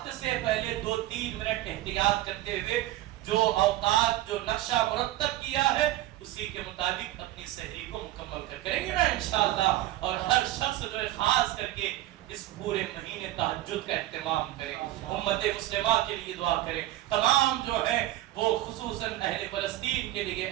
سے پہلے 2-3 منٹ احتیاط کرتے ہوئے جو اوقات جو نقشہ مرتب کیا ہے اسی کے مطابق اپنی سحری کو مکمل کریں گے نا انشاءاللہ۔ اور ہر شخص جو ہے خاص کر کے اس پورے مہینے تہجد کا اہتمام کریں، امت مسلمہ کے لیے دعا کریں، تمام جو ہے وہ خصوصاً اہل فلسطین کے لیے،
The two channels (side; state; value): left; quieter; 15.6 dB